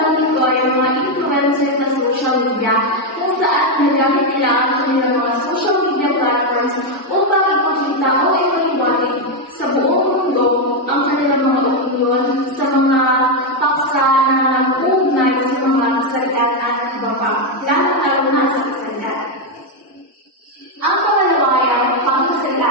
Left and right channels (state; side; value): normal; both; correlation 0.04